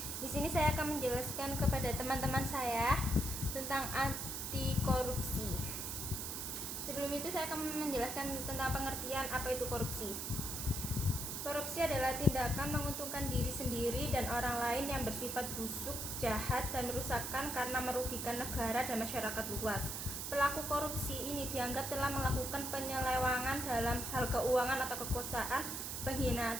Di sini saya akan menjelaskan kepada teman-teman saya tentang anti korupsi. Sebelum itu saya akan menjelaskan tentang pengertian apa itu korupsi. Korupsi adalah tindakan menguntungkan diri sendiri dan orang lain yang bersifat busuk, jahat, dan merusakkan karena merugikan negara dan masyarakat luas. Pelaku korupsi ini dianggap telah melakukan penyelewengan dalam hal keuangan atau kekuasaan,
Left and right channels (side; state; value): right; noise; hiss, 4 dB below the sound